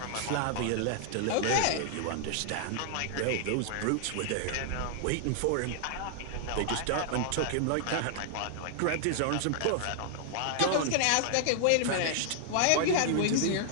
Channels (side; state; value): both; different; correlation -0.01